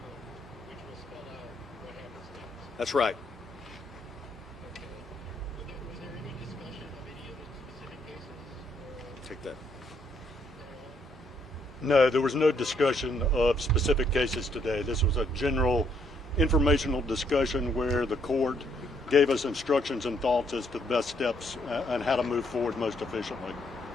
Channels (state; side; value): normal; both; correlation 0.71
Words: which will spell out what happens next. That's right. Okay. Was there any discussion of any of the specific cases? Take that. No, there was no discussion of specific cases today. This was a general informational discussion where the court gave us instructions and thoughts as to the best steps and how to move forward most efficiently.